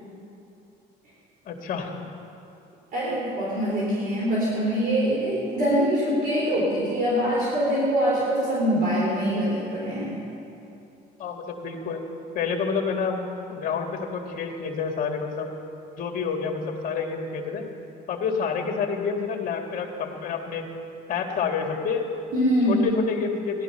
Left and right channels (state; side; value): normal; both; correlation 0.39